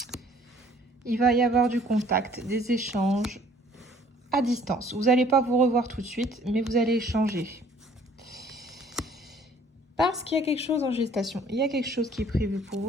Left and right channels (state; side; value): normal; both; correlation 0.56